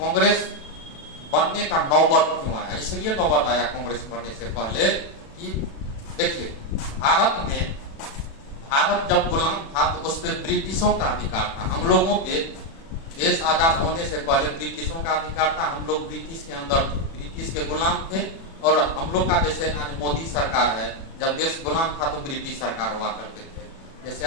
बनने का नौबत क्यों आया। इसलिए नौबत आया कांग्रेस बनने से पहले कि देखिए, भारत जब गुलाम था तो उस पर ब्रिटिशों का अधिकार था। हम लोगों पे देश आजाद होने से पहले ब्रिटिशों का अधिकार था। हम लोग ब्रिटिश के अंदर थे, ब्रिटिश के गुलाम थे। और हम लोग का जैसे आज मोदी सरकार है, जब देश गुलाम था तो ब्रिटिश सरकार हुआ करते थे। जैसे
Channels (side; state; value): right; late; 36 ms